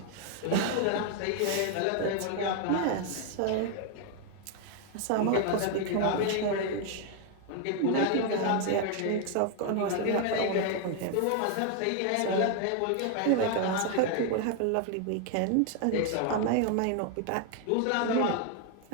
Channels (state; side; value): different; both; correlation 0.00